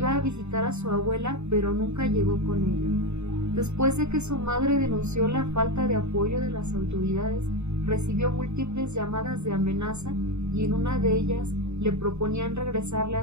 a visitar a su abuela, pero nunca llegó con ella. Después de que su madre denunció la falta de apoyo de las autoridades, recibió múltiples llamadas de amenaza y en una de ellas le proponían regresarle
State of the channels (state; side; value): late; left; 0.82 ms